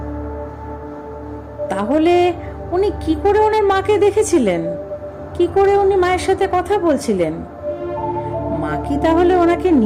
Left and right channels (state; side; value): identical; both; correlation 1.00